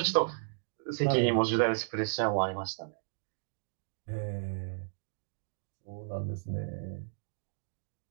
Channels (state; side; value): silent; left; digital silence